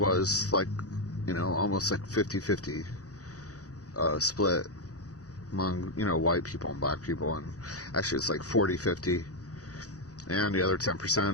like, almost like 50-50 split among, white people and black people, and actually it's like 40-50, and the other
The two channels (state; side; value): late; right; 0.67 ms